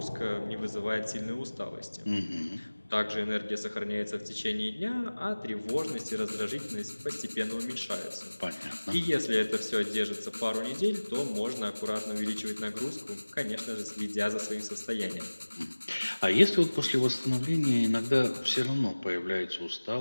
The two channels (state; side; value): inverted; both; correlation -1.00